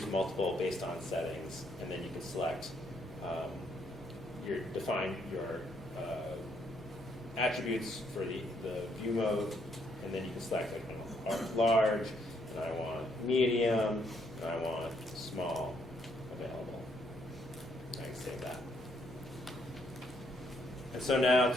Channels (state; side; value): normal; both; correlation 0.72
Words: multiple based on settings. And then you can select define your attributes for the view mode, and then you can select like I want large, and I want medium, and I want small available. I can save that. And so now